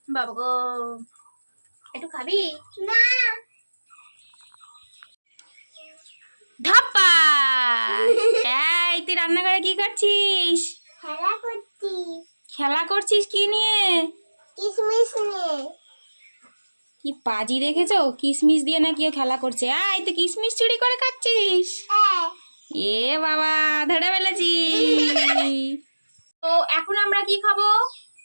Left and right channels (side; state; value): both; inverted; correlation -1.00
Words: বাবা গো, একটু খাবি না? ধাপ্পা। এই তুই রান্নাঘরে কি করছিস? খেলা করছি। খেলা করছিস কি নিয়ে? কিশমিশ নিয়ে। কি পাজি দেখেছো, কিশমিশ দিয়ে না কেউ খেলা করছে। আয় তুই কিশমিশ চুরি করে খাচ্ছিস? এ বাবা, ধরে ফেলেছি। তো এখন আমরা কি খাবো?